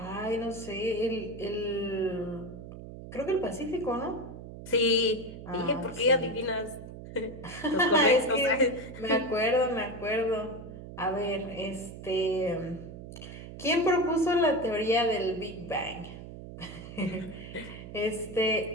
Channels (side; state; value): right; noise; hum, 12 dB below the sound